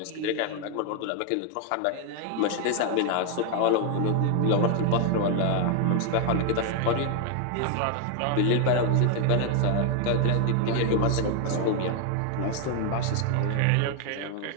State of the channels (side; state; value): both; different; correlation 0.00